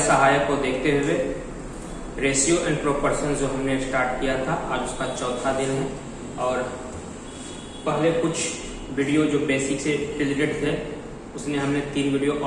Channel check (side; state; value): both; identical; correlation 1.00